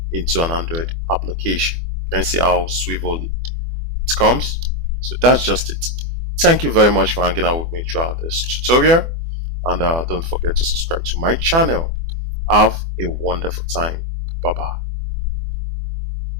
into an Android application. You can see how swivel it comes. So that's just it. Thank you very much for hanging out with me throughout this tutorial, and don't forget to subscribe to my channel. Have a wonderful time. Bye bye.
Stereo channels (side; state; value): left; late; 24 ms